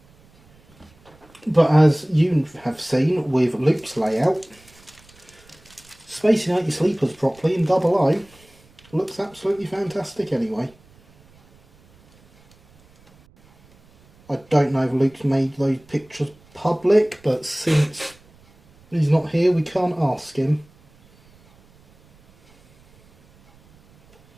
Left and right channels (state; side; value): noise; right; rumble, 29 dB below the sound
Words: but as you have seen with Luke's layout, spacing out your sleepers properly in double O looks absolutely fantastic anyway. I don't know if Luke's made those pictures public, but since he's not here, we can't ask him.